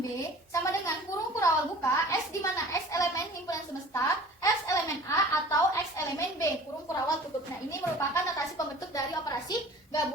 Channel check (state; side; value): normal; both; correlation 0.44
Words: sama dengan kurung kurawal buka S, di mana X elemen himpunan semesta, X elemen A, atau X elemen B, kurung kurawal tutup. Nah, ini merupakan notasi pembentuk dari operasi